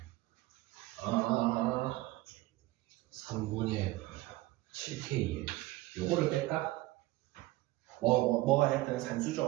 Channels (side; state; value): left; quieter; 18.7 dB